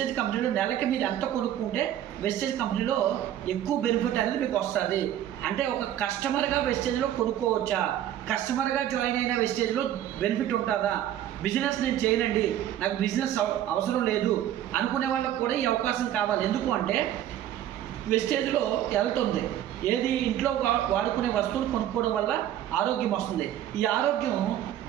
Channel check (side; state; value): left; quieter; 11.6 dB